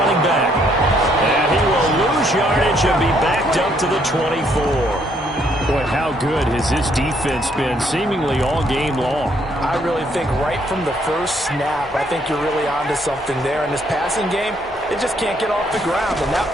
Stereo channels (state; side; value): normal; both; correlation 0.69